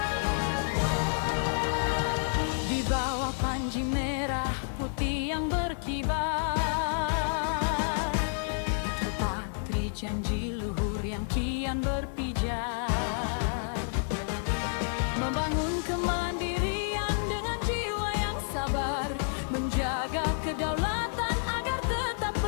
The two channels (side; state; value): right; silent; 58 dB below the other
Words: bawah panji merah putih yang berkibar, terpatri janji luhur yang kian berpijar, membangun kemandirian dengan jiwa yang sabar, menjaga kedaulatan agar tetap